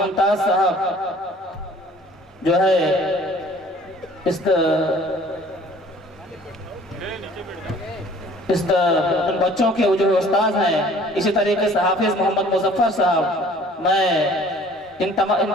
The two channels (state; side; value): normal; both; correlation 0.52